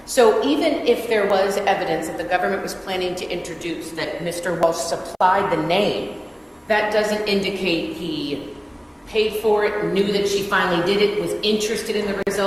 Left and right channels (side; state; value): both; identical; correlation 1.00